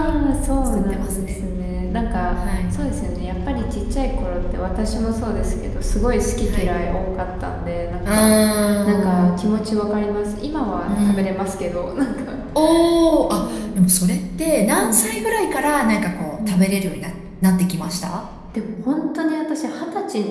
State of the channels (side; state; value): both; identical; correlation 1.00